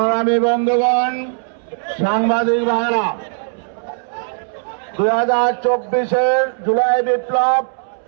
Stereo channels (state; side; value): silent; left; 67 dB below the other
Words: বন্ধুগণ, সাংবাদিক ভাইরা, 2024-এর জুলাই বিপ্লব